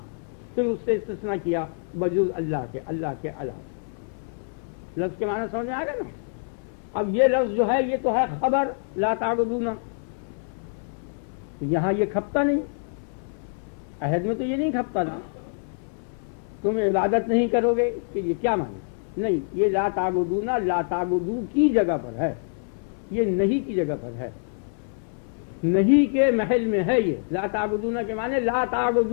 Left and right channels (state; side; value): silent; right; 61 dB below the other